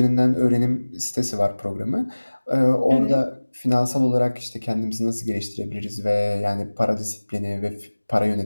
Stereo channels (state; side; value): inverted; both; correlation -1.00